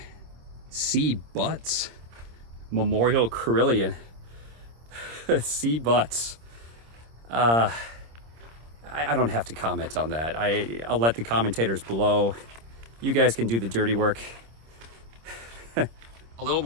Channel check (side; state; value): left; late; 26 ms